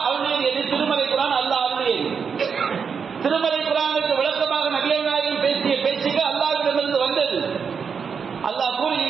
அருளியது எது? திருமலை குர்ஆன் அல்லாஹ் அருளியது. திருமலை குர்ஆனுக்கு விளக்கமாக நபிகள் நாயகம் பேசிய பேச்சுக்கு அல்லாஹ்விடமிருந்து வந்தது. அல்லாஹ்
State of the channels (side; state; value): left; quieter; 6.2 dB